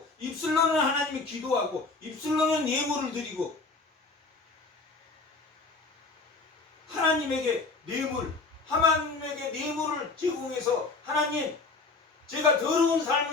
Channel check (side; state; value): right; quieter; 3.9 dB